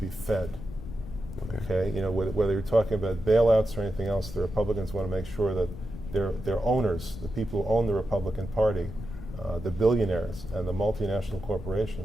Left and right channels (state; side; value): noise; left; rumble, 11 dB below the sound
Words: fed. Okay. Whether you're talking about bailouts or anything else, the Republicans want to make sure that their owners, the people who own the Republican Party, the billionaires and the multinational